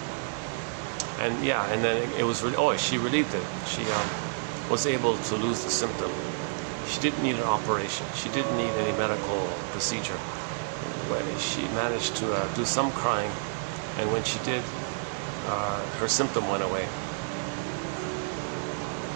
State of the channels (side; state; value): left; silent; digital silence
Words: And yeah, and then it was, she relieved it. She was able to lose the symptom. She didn't need an operation. She didn't need any medical procedure. But she managed to do some crying, and when she did, her symptom went away.